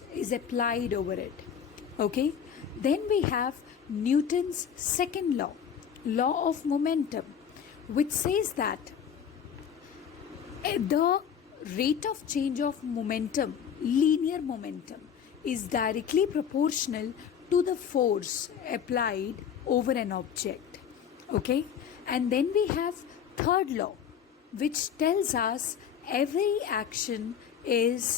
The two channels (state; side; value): quieter; right; 8.1 dB